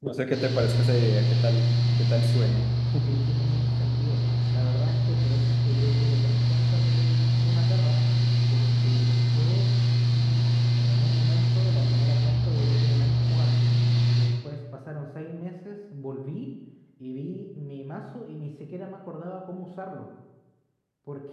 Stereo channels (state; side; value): identical; both; correlation 1.00